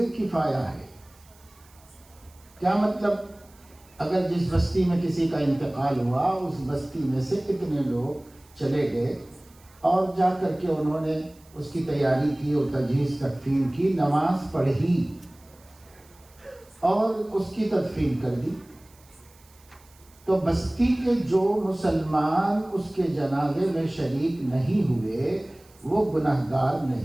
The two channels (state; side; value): noise; right; hiss, 28 dB below the sound